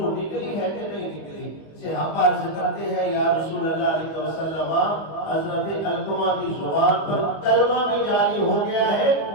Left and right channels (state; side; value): late; right; 25 ms